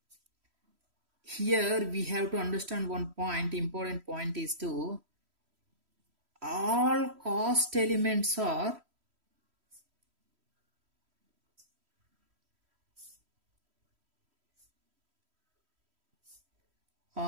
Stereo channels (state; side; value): late; left; 3.1 ms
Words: Here we have to understand one point, important point is to all cost elements are